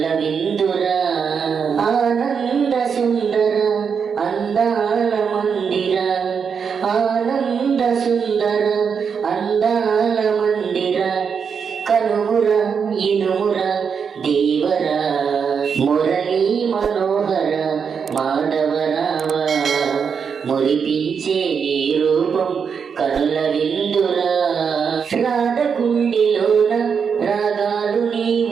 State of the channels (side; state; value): left; quieter; 6.4 dB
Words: విందురా ఆనంద సుందర అందాల మందిర ఆనంద సుందర అందాల మందిర కనుముర ఇనుముర దేవర మురళీ మనోహర మాధవరావ మురిపించే నీ రూపం కనుల విందురా రాధకుండిలోన రాగాలు